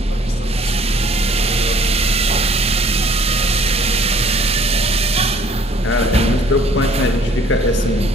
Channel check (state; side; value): normal; both; correlation 0.57